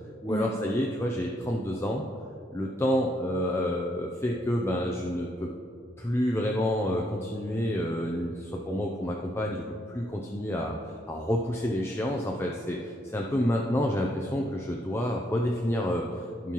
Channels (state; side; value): normal; both; correlation 0.73